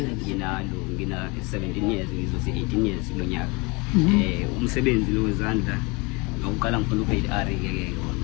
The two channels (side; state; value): right; quieter; 27.6 dB